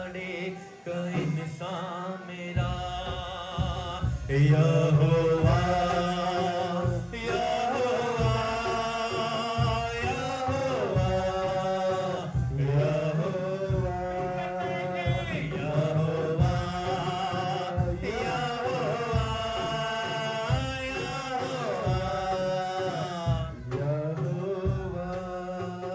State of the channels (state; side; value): identical; both; correlation 1.00